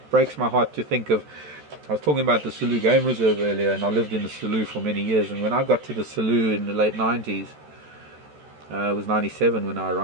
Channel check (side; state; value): left; late; 14 ms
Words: breaks my heart to think of. I was talking about the Selous Game Reserve earlier, and I lived in the Selous for many years. And when I got to the Selous in the late 90s, it was 97 when I